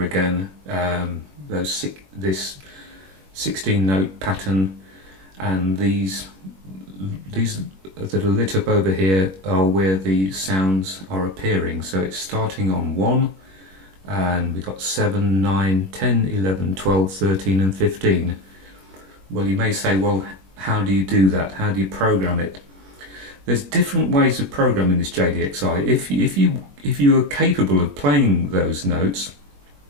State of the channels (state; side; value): late; left; 21 ms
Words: again this 16-note pattern, and these that are lit up over here are where the sounds are appearing. So it's starting on 1, and we've got 7, 9, 10, 11, 12, 13 and 15. Well, you may say, well, how do you do that? How do you program it? There's different ways of programming this JDXI. If you are capable of playing those notes,